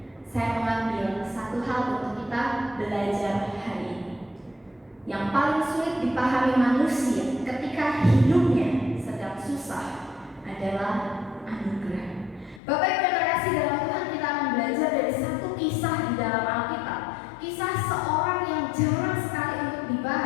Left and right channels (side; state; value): right; drops out; at 12.6 s